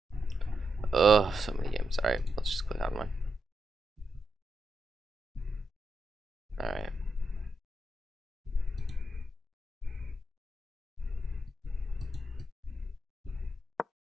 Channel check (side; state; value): both; normal; correlation 0.85